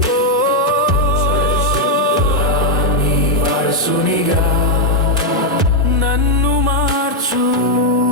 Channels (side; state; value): both; normal; correlation 0.01